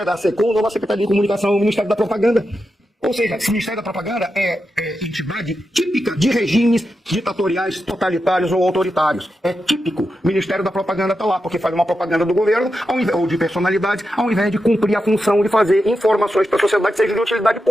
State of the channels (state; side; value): normal; both; correlation 0.88